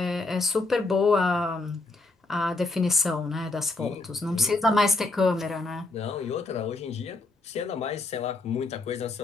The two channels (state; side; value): quieter; right; 3.3 dB